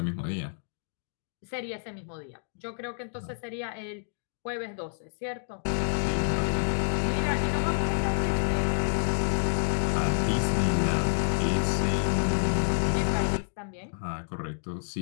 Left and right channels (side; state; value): right; silent; digital silence